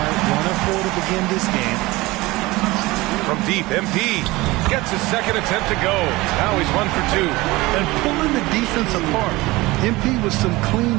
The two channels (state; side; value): quieter; left; 20.7 dB